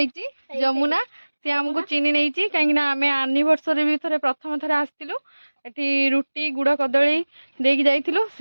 जमुना सी आमको चिन्ह नहीं कहीं आम एनिवर्सरी भी थे प्रथम थर आसलु एटी रुटी गुड़ कदली देकी जाइलु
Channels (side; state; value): both; inverted; correlation -1.00